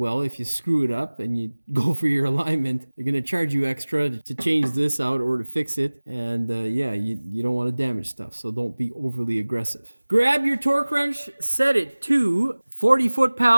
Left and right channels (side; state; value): both; inverted; correlation -1.00